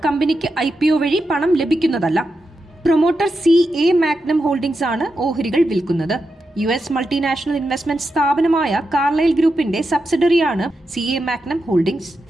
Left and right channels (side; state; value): both; normal; correlation 0.87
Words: കമ്പനിക്ക് IPO വഴി പണം ലഭിക്കുന്നതല്ല. പ്രൊമോട്ടർ CA മാഗ്നം ഹോൾഡിംഗ്സ് ആണ് ഓഹരികൾ വിൽക്കുന്നത്. US മൾട്ടിനാഷണൽ ഇൻവെസ്റ്റ്മെന്റ് സ്ഥാപനമായ കാർലൈൽ ഗ്രൂപ്പിന്റെ സബ്സിഡറിയാണ് CA മാഗ്നം ഹോൾഡിംഗ്സ്.